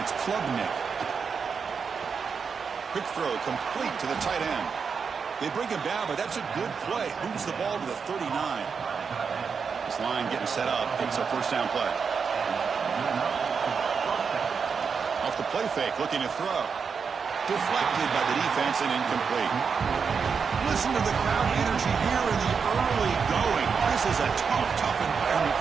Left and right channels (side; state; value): left; quieter; 5.9 dB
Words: it's Klubnik. Quick throw, complete to the tight end. They bring him down, but that's a good play. Moves the ball to the 39. This line getting set up. It's a first down play. Off the play fake, looking to throw. Deflected by the defense and incomplete. Listen to the crowd energy here in the early going. This is a tough environment